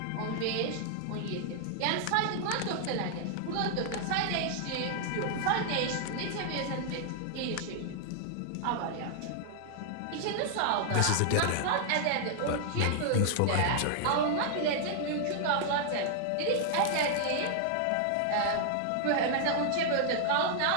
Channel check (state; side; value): different; both; correlation -0.01